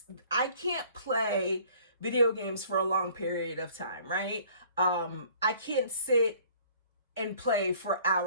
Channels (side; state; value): both; inverted; correlation -0.55